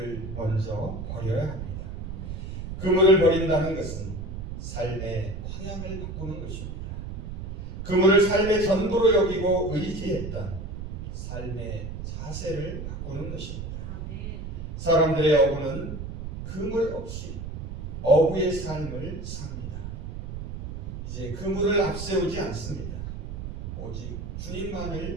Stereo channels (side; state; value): right; noise; rumble, 7 dB below the sound